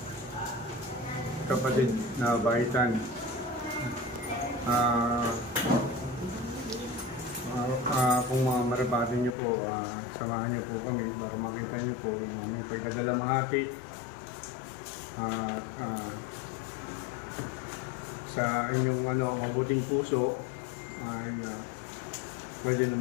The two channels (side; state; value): right; drops out; at 9.3 s